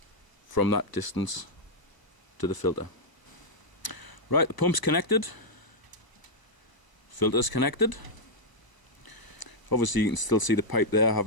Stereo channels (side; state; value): right; late; 1.0 ms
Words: from that distance to the filter. Right, the pump's connected, filter's connected. Obviously you can still see the pipe there. I